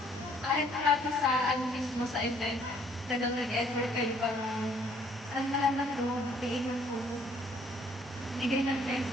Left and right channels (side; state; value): both; normal; correlation 0.62